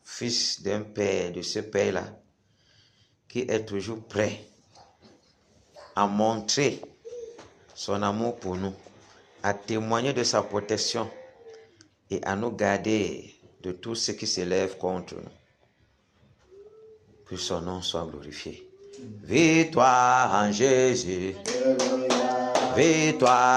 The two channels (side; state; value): both; identical; correlation 1.00